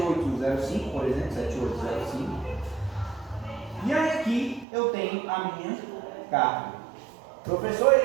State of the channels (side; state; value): left; drops out; at 4.7 s